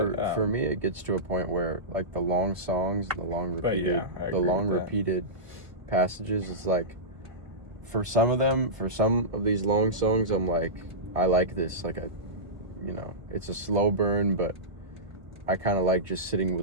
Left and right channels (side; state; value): left; late; 1.7 ms